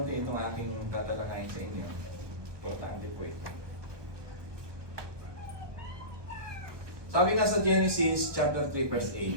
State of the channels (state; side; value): late; left; 1.2 ms